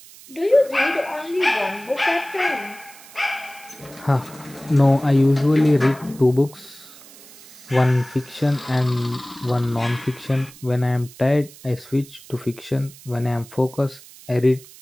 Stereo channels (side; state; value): right; noise; hiss, 21 dB below the sound